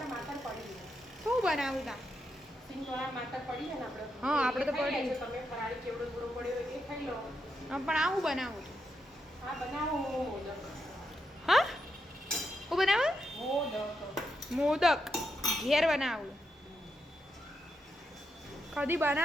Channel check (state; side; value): normal; both; correlation 0.83